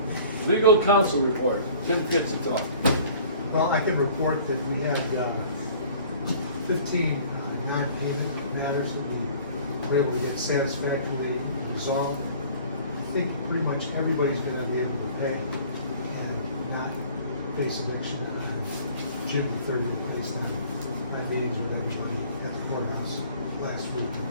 Legal counsel report, Tim gets to talk. Well, I can report that we had 15 non-payment matters that we were able to get satisfactorily resolved. I think pretty much everybody's gonna be able to pay and not face eviction on June 30th based on my meetings with everybody at the courthouse last week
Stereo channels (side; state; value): both; inverted; correlation -0.50